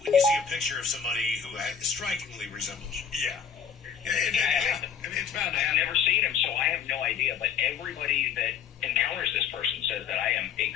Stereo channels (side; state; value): right; quieter; 7.3 dB